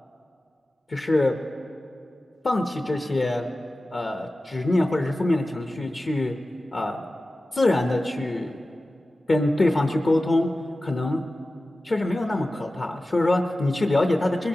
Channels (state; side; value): normal; both; correlation 0.95